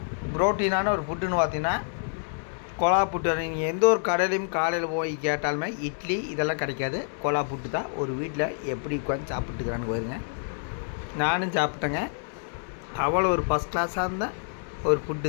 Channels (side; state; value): right; silent; 60 dB below the other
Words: ப்ரோட்டீனான ஒரு ஃபுட்டுன்னு பார்த்தீங்கன்னா கொலா புட்டு. நீங்கள் எந்த ஒரு கடையிலையும் காலையில் போய் கேட்டாலுமே இட்லி இதெல்லாம் கிடைக்காது. கொலா புட்டு தான் ஒரு வீட்டில் எப்படி உட்காந்து சாப்பிட்டுக்கிறான்னு பாருங்க. நானும் சாப்பிட்டேங்க. அவ்வளோ ஒரு ஃபஸ்ட் கிளாஸாக இருந்தால் ஒரு